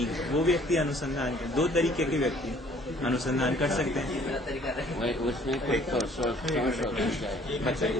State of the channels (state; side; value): normal; both; correlation 0.57